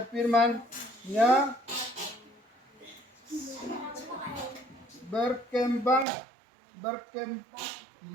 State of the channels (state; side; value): drops out; left; at 6.1 s